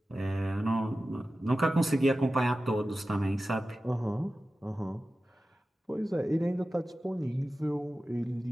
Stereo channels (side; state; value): both; normal; correlation 0.94